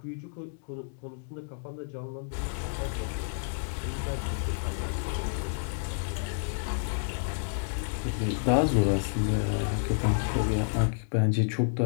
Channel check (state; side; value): silent; right; digital silence